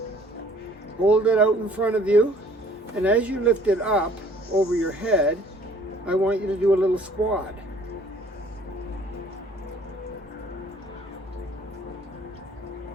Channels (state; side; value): normal; both; correlation 0.55